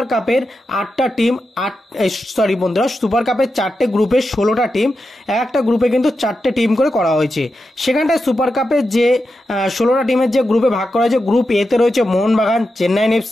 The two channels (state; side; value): normal; both; correlation 0.89